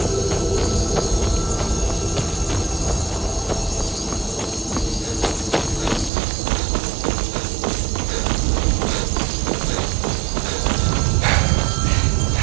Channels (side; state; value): left; drops out; at 6.1 s